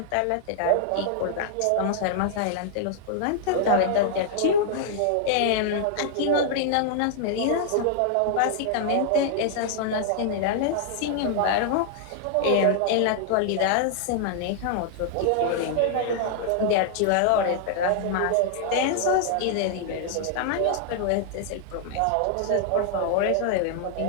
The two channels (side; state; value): both; different; correlation -0.01